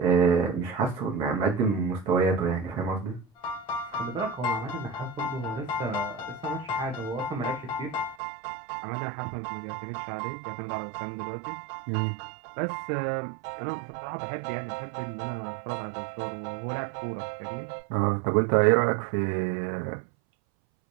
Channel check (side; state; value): left; drops out; at 8.2 s